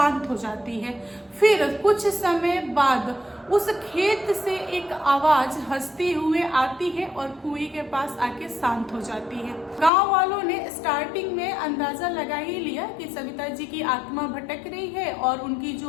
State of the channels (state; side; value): drops out; right; at 9.9 s